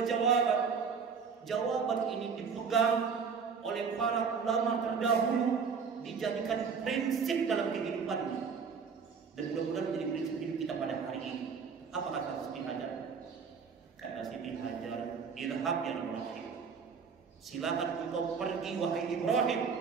jawaban. Jawaban ini dipegang oleh para ulama terdahulu, dijadikan prinsip dalam kehidupannya. Dan mudah-mudahan menjadi prinsip hidup kita pada hari ini. Apa kata Siti Hajar? Kata Siti Hajar, idhab ya Ibrahim, silakan engkau pergi wahai Ibrahim.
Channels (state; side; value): quieter; left; 5.9 dB